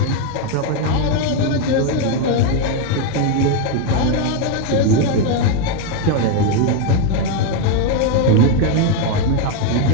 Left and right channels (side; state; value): both; different; correlation 0.02